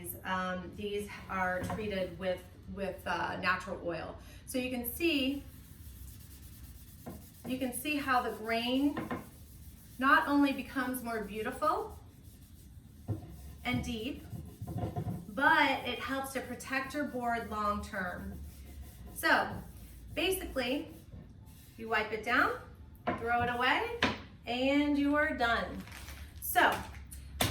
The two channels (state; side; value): identical; both; correlation 1.00